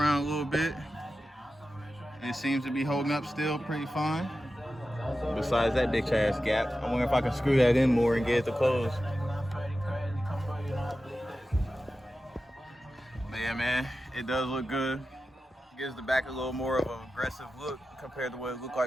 a little bit. It seems to be holding up still pretty fine. Besides that bitch ass gap. I wonder if I can screw that in more and get it to close. But yeah, man, it does look good. Gives the back a little more of an aggressive look compared to what it looked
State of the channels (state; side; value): normal; both; correlation 0.93